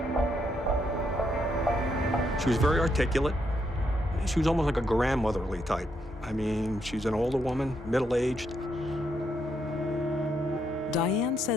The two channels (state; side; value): normal; both; correlation 0.77